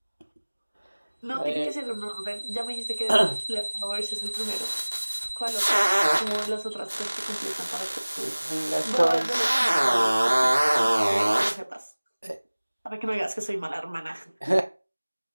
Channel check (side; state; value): both; inverted; correlation -1.00